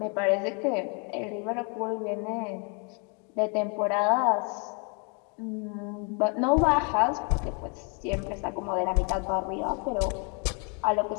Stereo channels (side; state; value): right; quieter; 36.5 dB